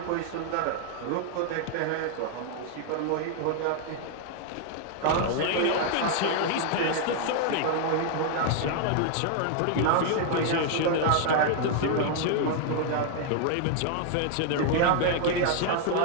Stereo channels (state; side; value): different; both; correlation 0.00